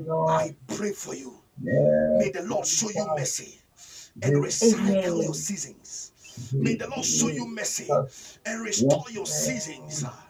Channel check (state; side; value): identical; both; correlation 1.00